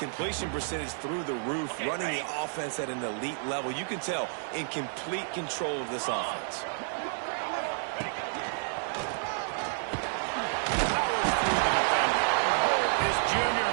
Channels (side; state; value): left; silent; 58 dB below the other